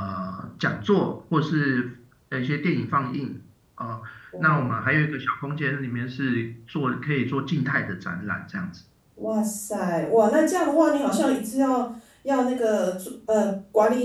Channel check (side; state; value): both; identical; correlation 1.00